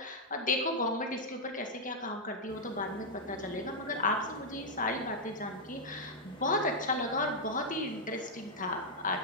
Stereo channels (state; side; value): normal; both; correlation -0.04